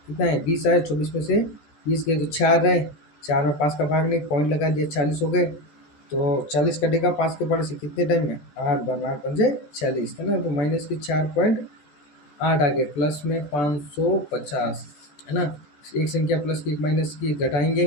कितना है 20 आए, 24 में से 20 गए तो 4 रहे, 4 में 5 का भाग नहीं, पॉइंट लगा दिया, 40 हो गए। तो 40 कटेगा 5 के पाड़े से कितने टाइम में, 8 बार, 8 पंजे 40 है ना, तो माइनस की 4.8 आ गए, प्लस में 550 है ना। एक संख्या प्लस की एक माइनस की घटाएंगे,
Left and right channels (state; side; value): late; right; 14 ms